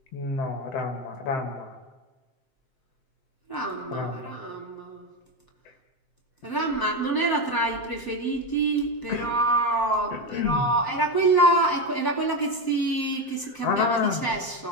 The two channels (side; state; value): right; late; 7.7 ms